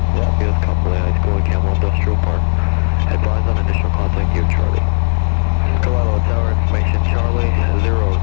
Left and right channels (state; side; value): silent; right; 62 dB below the other